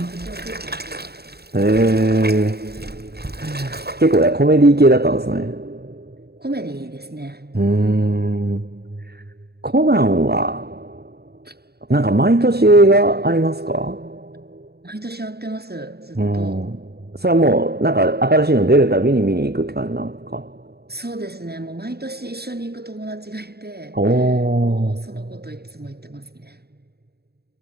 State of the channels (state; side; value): late; left; 0.47 ms